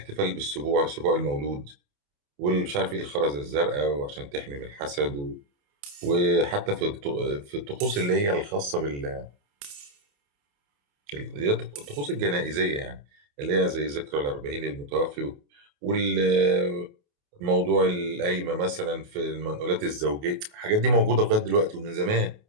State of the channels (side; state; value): left; late; 28 ms